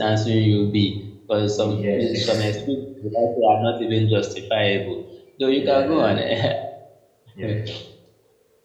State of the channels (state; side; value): identical; both; correlation 1.00